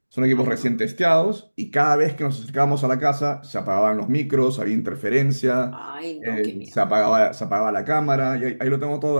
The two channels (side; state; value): both; inverted; correlation -1.00